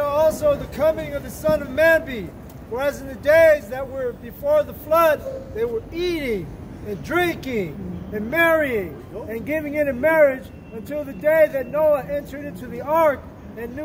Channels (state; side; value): identical; both; correlation 1.00